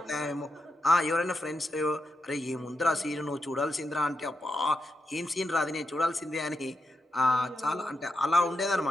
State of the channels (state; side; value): normal; both; correlation 0.85